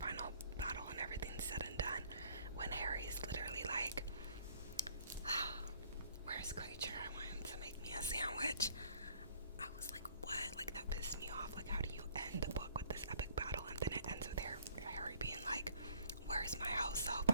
battle and everything's said and done, when Harry's literally like, where's Creature? I want him to make me a sandwich. I was like, what? Like, that pissed me off. Like, how do you end the book with this epic battle and then it ends with Harry being like, where's my house elf?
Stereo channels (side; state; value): both; inverted; correlation -0.59